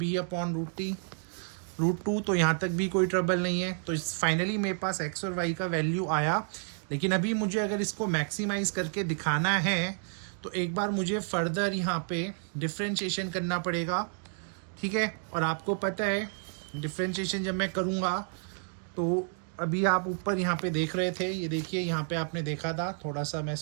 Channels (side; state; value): left; silent; 58 dB below the other